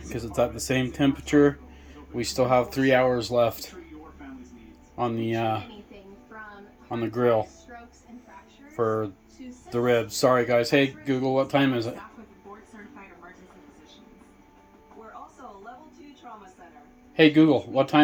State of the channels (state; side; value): identical; both; correlation 1.00